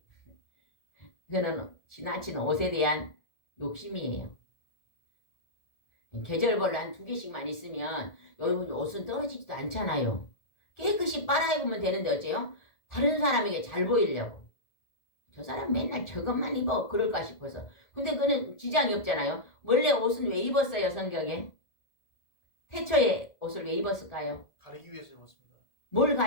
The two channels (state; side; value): late; right; 1.7 ms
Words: 그거는 지나친 옷에 대한 욕심이에요. 계절별로 한 2개씩만 있으면 여러분 옷은 떨어지지도 않잖아요. 깨끗이 빨아입으면 되는데 어째요? 다른 사람에게 잘 보이려고. 저 사람 맨날 저것만 입어 그럴까 싶어서. 근데 그는 지장이 없잖아요. 원래 옷은 왜 입었어요 성경에? 태초에 옷을 왜 입었을까요? 가리기 위해서 입었습니다. 뭘